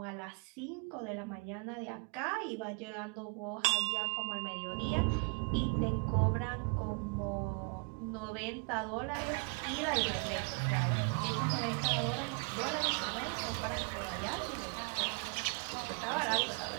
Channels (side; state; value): left; quieter; 37.3 dB